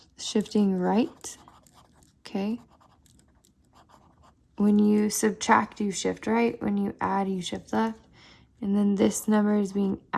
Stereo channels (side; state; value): both; identical; correlation 1.00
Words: right, okay? When you subtract, you shift right. When you add, you shift left. And then this number is being